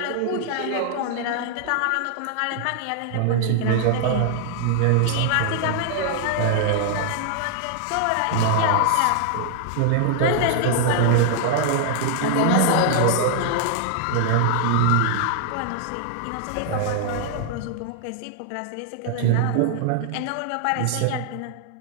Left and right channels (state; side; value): different; both; correlation 0.00